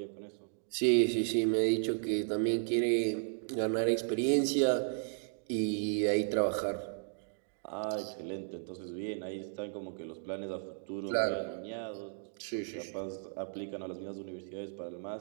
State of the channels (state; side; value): silent; left; digital silence